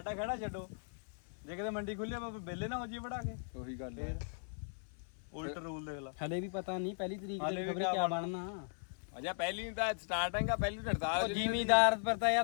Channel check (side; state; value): right; silent; 52 dB below the other